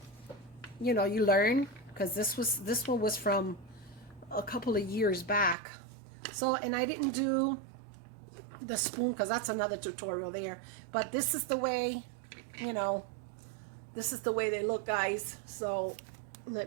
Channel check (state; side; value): drops out; left; at 5.6 s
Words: you know, you learn. Because this one was from a couple of years back. So, and I didn't do the spoon because that's another tutorial there. But this is the way, you know, this is the way they look, guys. So